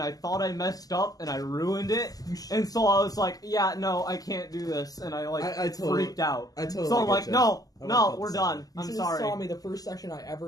thought I messed up and I ruined it, and so I was like, yeah, no, I can't do this, and I like freaked out. So I'm like, no, we're done. I'm sorry. You saw me the first session I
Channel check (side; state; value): right; late; 0.17 ms